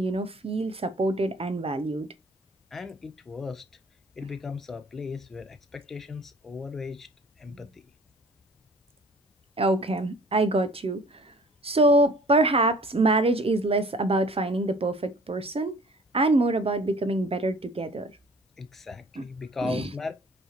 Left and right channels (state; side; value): normal; both; correlation 0.51